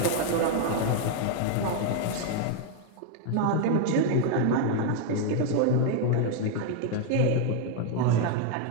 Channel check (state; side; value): different; both; correlation 0.00